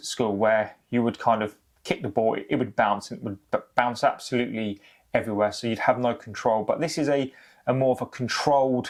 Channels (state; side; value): identical; both; correlation 1.00